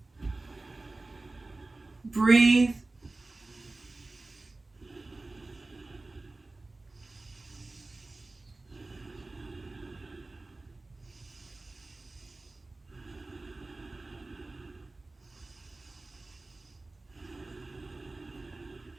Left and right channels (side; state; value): left; quieter; 3.2 dB